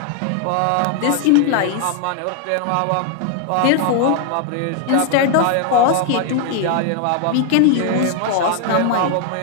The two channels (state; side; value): different; both; correlation 0.00